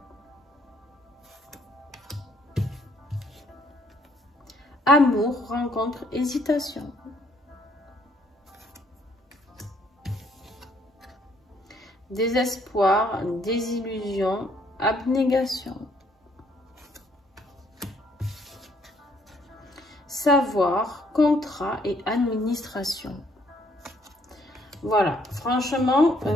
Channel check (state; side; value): normal; both; correlation 0.66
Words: Amour, rencontre, hésitation. Désespoir, désillusion, abnégation. Savoir, contrat et administration. Voilà, franchement,